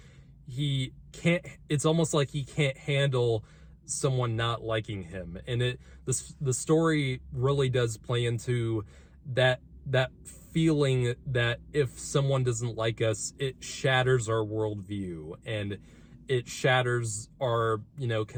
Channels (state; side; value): identical; both; correlation 1.00